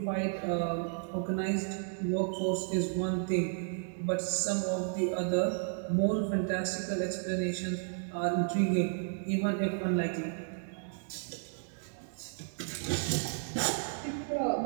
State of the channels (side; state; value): left; silent; digital silence